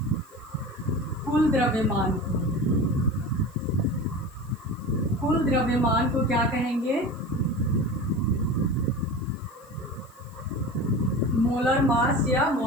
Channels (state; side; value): noise; left; hiss, 28 dB below the sound